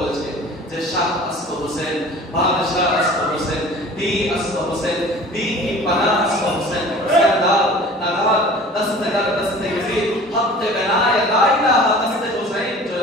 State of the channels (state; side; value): normal; both; correlation 0.43